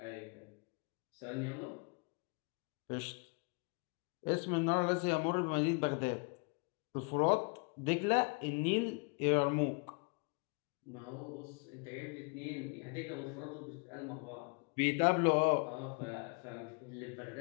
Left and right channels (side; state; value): right; quieter; 33.1 dB